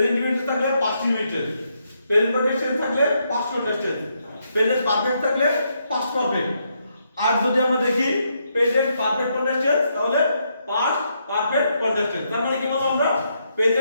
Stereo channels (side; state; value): both; inverted; correlation -0.78